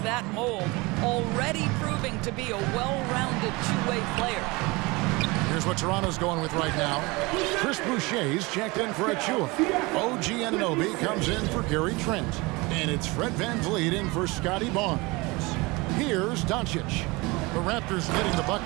mold, already proving to be a well-rounded two-way player. Here's what Toronto's going with right now. Chris Boucher's checked in for Achua. OG Anunoby comes in for Gary Trent. And it's Fred VanVleet in for Scotty Barnes. Here's Doncic. The Raptors getting the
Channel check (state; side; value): quieter; left; 24.4 dB